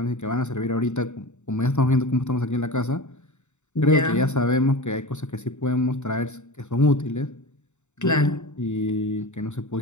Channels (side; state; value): right; late; 0.84 ms